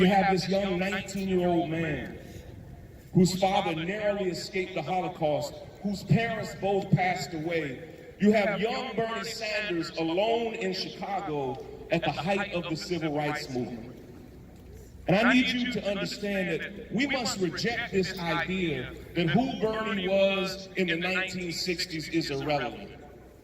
have this young 19-year-old man whose father narrowly escaped the Holocaust, whose parents both passed away. You have young Bernie Sanders alone in Chicago at the height of the civil rights movement. And I need you to understand that we must reject this idea that who Bernie was in the 1960s is irrelevant.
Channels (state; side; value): identical; both; correlation 1.00